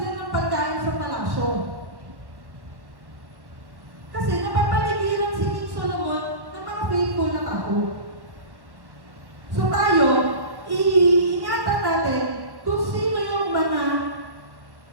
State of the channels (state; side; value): late; left; 1.1 ms